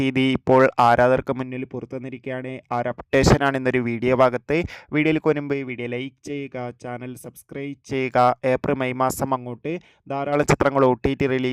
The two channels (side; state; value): both; identical; correlation 1.00